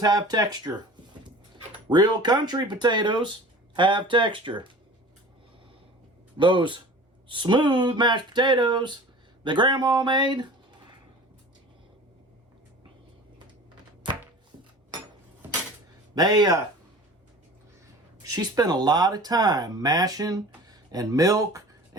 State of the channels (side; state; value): both; normal; correlation 0.41